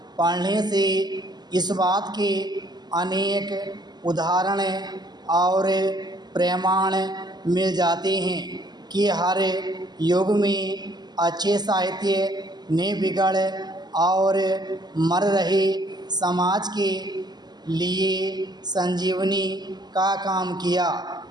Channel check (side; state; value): left; late; 0.20 ms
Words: पढ़ने से इस बात के अनेक उदाहरण और प्रमाण मिल जाते हैं कि हर युग में अच्छे साहित्य ने बिगड़ और मर रहे समाज के लिए संजीवनी का काम किया।